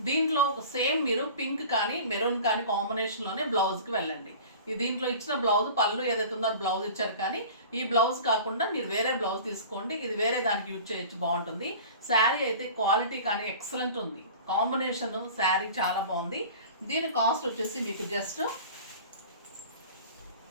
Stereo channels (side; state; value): both; inverted; correlation -0.40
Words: దీంట్లో సేమ్ మీరు పింక్ కానీ మెరూన్ కానీ కాంబినేషన్లోనే బ్లౌజ్కి వెళ్ళండి. ఈ దీంట్లో ఇచ్చిన బ్లౌజ్ పళ్ళు ఏదైతే ఉందో అది బ్లౌజ్ ఇచ్చారు, కానీ ఈ బ్లౌజ్ కాకుండా మీరు వేరే బ్లౌజ్ తీసుకోండి. ఇది వేరే దానికి యూజ్ చేయొచ్చు, బాగుంటుంది. శారీ అయితే క్వాలిటీ కానీ ఎక్సలెంట్ ఉంది. కాంబినేషన్ శారీ చాలా బాగుంది. దీని కాస్ట్ వచ్చేసి మీకు జస్ట్